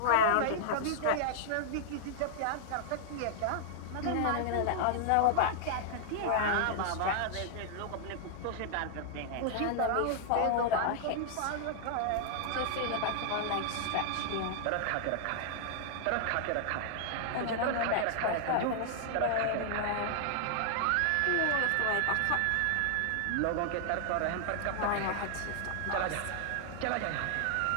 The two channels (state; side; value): different; both; correlation -0.01